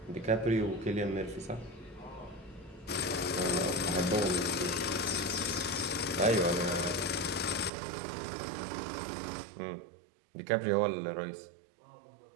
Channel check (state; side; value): drops out; left; at 7.7 s